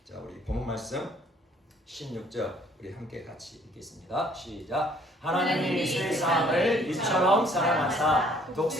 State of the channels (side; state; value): both; normal; correlation 0.60